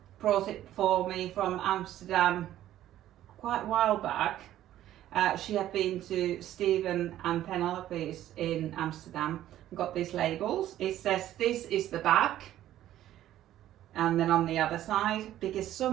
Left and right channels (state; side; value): quieter; left; 12.9 dB